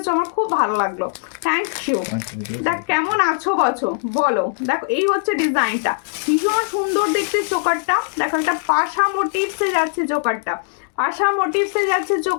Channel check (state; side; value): silent; right; digital silence